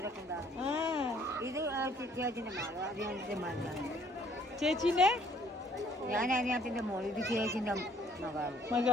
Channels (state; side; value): normal; both; correlation 0.61